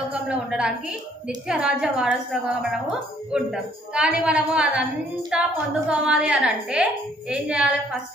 ఉండడానికి నిత్యరాజ్య వారసులుగా మనము ఉంటాం. కానీ మనము అదంతా పొందుకోవాలి అని అంటే ఏం చేయాలి?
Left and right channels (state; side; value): normal; both; correlation 0.63